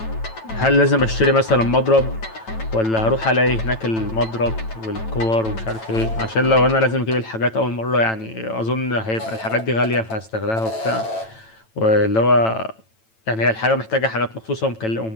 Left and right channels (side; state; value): right; late; 9.0 ms